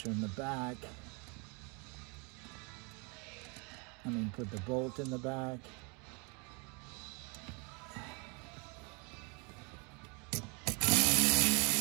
in the back. Put the bolt in the back.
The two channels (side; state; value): left; quieter; 32.4 dB